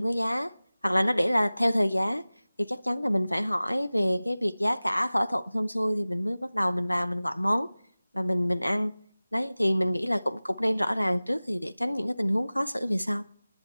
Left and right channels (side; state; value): both; inverted; correlation -0.98